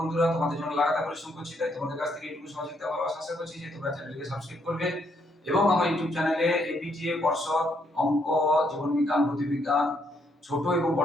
বন্ধুরা। তোমাদের জন্য লাগাতার পরিশ্রম করছি, তাই তোমাদের কাছ থেকে এইটুকু সহযোগিতা ভালোবাসা আশা করছি যে তোমরা চ্যানেলটিকে সাবস্ক্রাইব করবে এবং আমার ইউটিউব চ্যানেলে এবিটিএ, পর্ষদ, অঙ্ক, জীবন বিজ্ঞান, ভৌতবিজ্ঞান, ছোট এবং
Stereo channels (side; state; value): both; normal; correlation 0.73